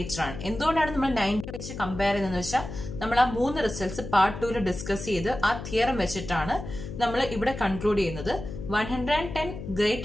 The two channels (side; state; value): left; noise; hum, 9 dB below the sound